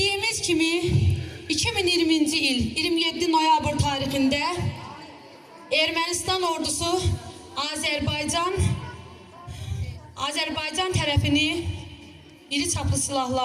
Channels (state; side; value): identical; both; correlation 1.00